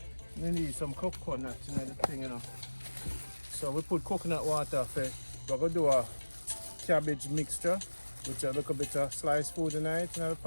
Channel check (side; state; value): both; inverted; correlation -1.00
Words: We need some coconut in the thing, you know. So we put coconut water for, we're going to do a cabbage mixture with a little bit of sliced food in it in the